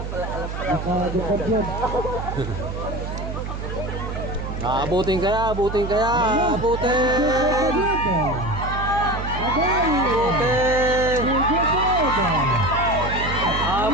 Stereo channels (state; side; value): noise; right; hum, 6 dB below the sound